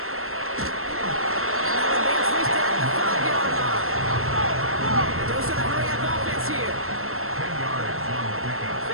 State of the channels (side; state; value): left; late; 0.62 ms